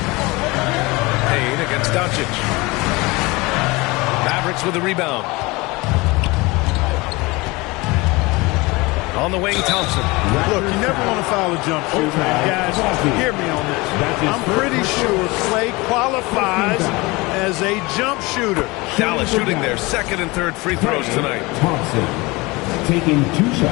Payne against Doncic. Mavericks with the rebound. On the wing, Thompson. Look, you never want to foul a jump shooter. Guys, hear me on this. I'm pretty sure Clay qualifies as a jump shooter. Dallas shooting their second and third free throws tonight. Thompson taking 2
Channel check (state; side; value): quieter; right; 23.7 dB